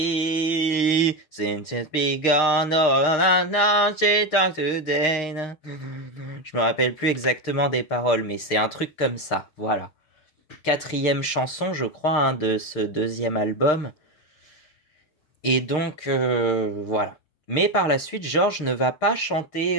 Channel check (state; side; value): late; right; 6.5 ms